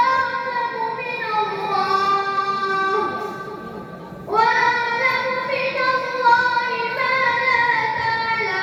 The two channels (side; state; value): both; identical; correlation 1.00